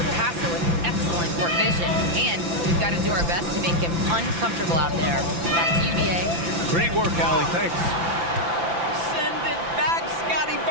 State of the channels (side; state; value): left; late; 5.9 ms